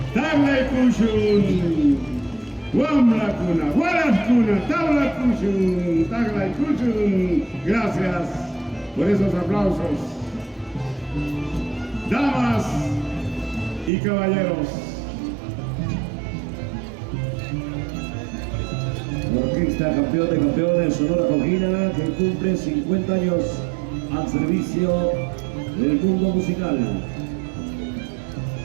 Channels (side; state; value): left; drops out; at 13.9 s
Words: Taglay Kushun, Wamla Kuna, Walas Kuna, Tabla Kushun, Taglay Kushun. Gracias por esos aplausos. Damas y caballeros. Orquesta campeón de campeones Sonora Jauquina, que cumple 50 años al servicio del mundo musical.